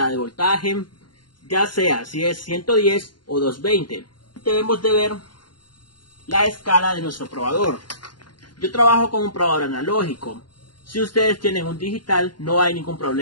de voltaje, ya sea si es 110 o 220. Debemos de ver la escala de nuestro probador. Yo trabajo con un probador analógico. Si ustedes tienen un digital, no hay ningún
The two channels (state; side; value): late; right; 0.71 ms